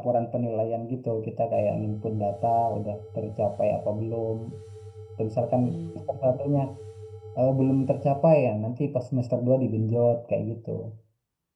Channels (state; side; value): identical; both; correlation 1.00